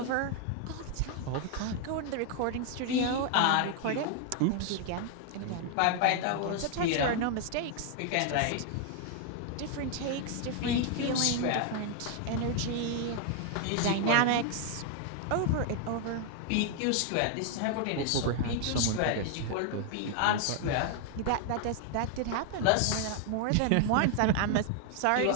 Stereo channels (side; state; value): both; different; correlation 0.00